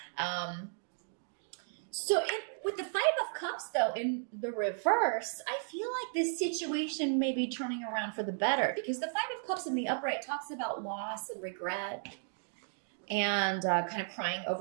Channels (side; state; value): left; silent; digital silence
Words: With the Five of Cups, though, in the reverse, I feel like this situation may be turning around for the better, because the Five of Cups in the upright talks about loss and regret, and kind of crying